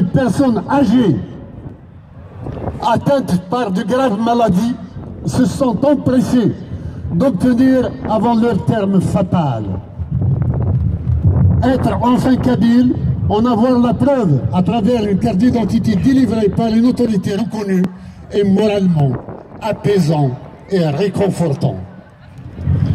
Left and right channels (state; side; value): identical; both; correlation 1.00